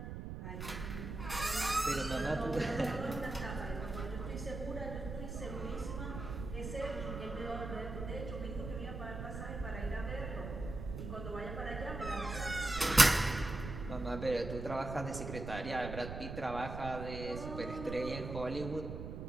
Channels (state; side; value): noise; right; rumble, 7 dB below the sound